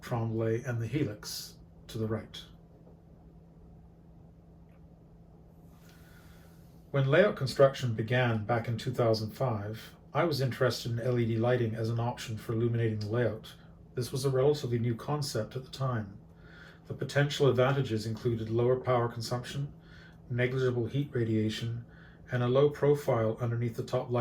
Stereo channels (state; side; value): identical; both; correlation 1.00